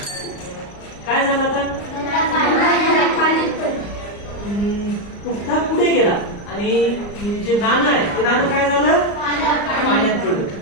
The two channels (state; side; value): late; right; 34 ms